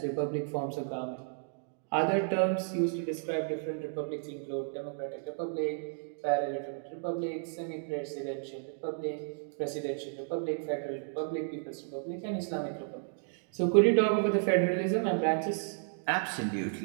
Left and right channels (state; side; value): silent; left; digital silence